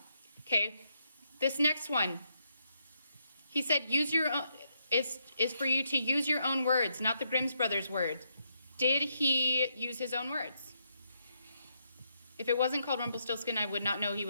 Okay, this next one, he said use your own, is for you to use your own words, not the Grimm's brothers' words. Did he use his own words? If it wasn't called Rumpelstiltskin, I would not know he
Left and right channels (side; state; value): both; inverted; correlation -0.78